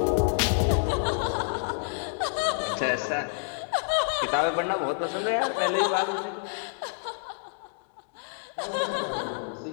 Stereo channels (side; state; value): right; silent; digital silence